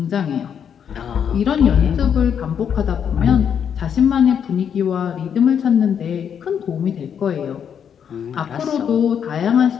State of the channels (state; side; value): quieter; right; 8.0 dB